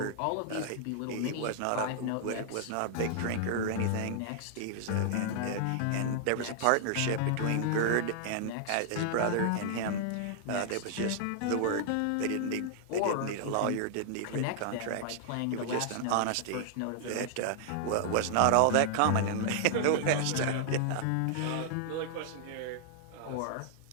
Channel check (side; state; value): both; different; correlation -0.01